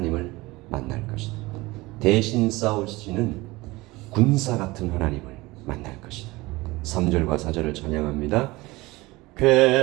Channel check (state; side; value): quieter; left; 21.3 dB